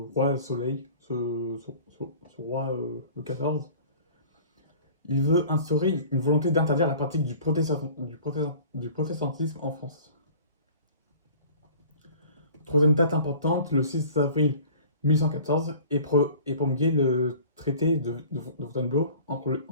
Soleil, ce roi Louis XIV, il veut instaurer une volonté d'interdire la pratique du protestantisme en France. Troisième date importante, le 6 avril 1814 et promulgué le traité de Fontainebleau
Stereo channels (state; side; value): inverted; both; correlation -0.46